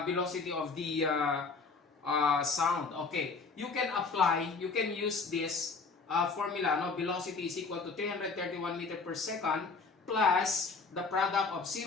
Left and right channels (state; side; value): quieter; right; 4.5 dB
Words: sound? Okay, you can use this formula, velocity is equal to 331 meter per second plus the product of